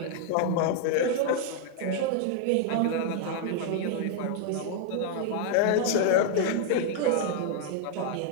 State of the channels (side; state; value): both; different; correlation 0.00